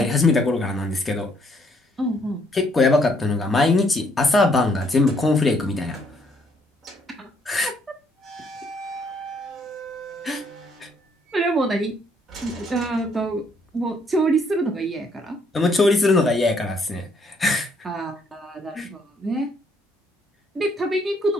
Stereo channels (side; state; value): both; normal; correlation 0.68